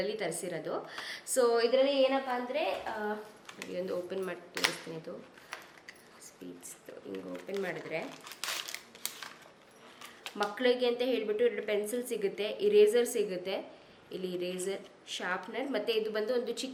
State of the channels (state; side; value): identical; both; correlation 1.00